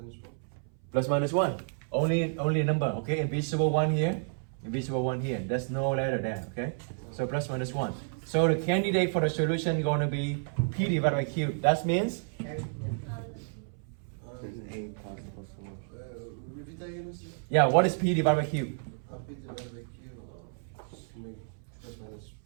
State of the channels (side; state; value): left; silent; 57 dB below the other